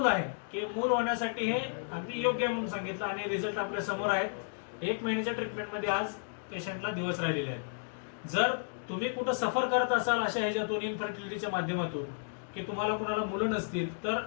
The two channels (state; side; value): silent; right; digital silence